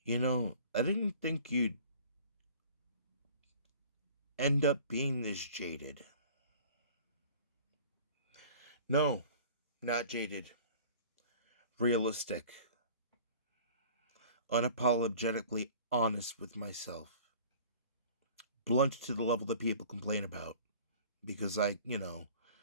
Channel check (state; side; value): inverted; both; correlation -0.47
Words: I didn't think you'd end up being this jaded. No, not jaded. Realistic. Unapologetically honest with myself. Blunt to the level that people complain about. Because I